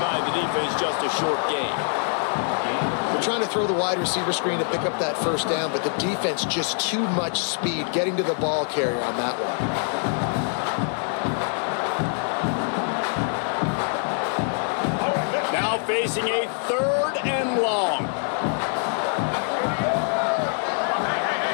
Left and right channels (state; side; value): silent; right; 56 dB below the other